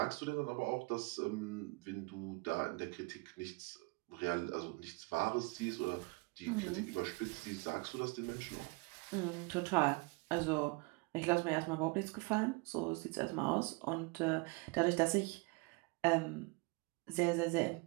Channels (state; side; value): quieter; left; 27.2 dB